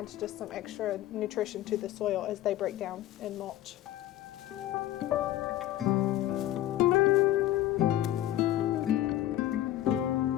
just some extra nutrition to the soil as they break down and mulch.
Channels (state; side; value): quieter; right; 13.7 dB